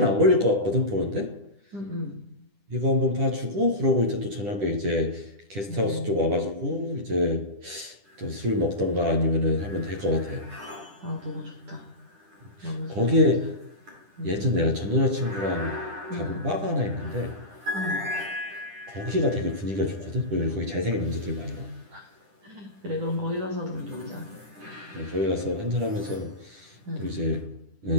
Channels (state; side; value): late; left; 10 ms